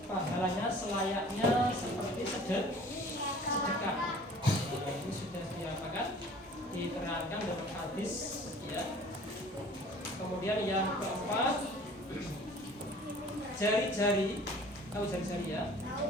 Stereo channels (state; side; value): normal; both; correlation 0.48